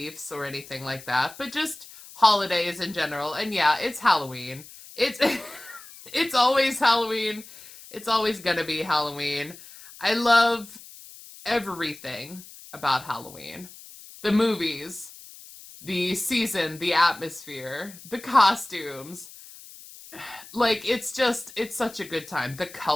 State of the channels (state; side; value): noise; left; hiss, 18 dB below the sound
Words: or anything like that, but just holidays in general. And yeah, it's Halloween. It's always Halloween. It's always gonna be Halloween. I love everything about Halloween. The movies, the season, the atmosphere, the costumes. Like, it's such a good time. The